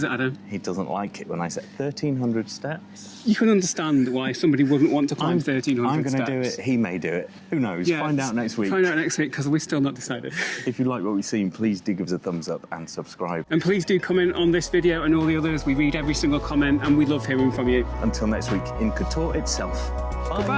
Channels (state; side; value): identical; both; correlation 1.00